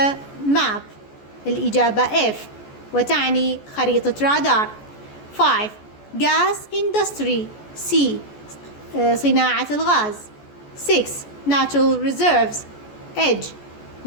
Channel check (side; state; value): right; late; 14 ms